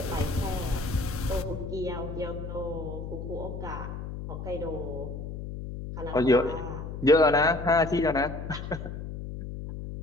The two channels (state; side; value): noise; left; hum, 7 dB below the sound